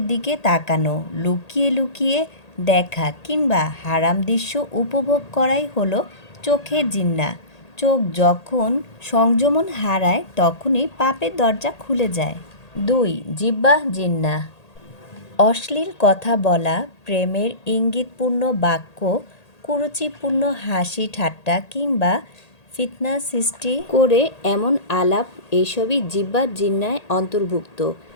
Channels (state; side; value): late; right; 1.8 ms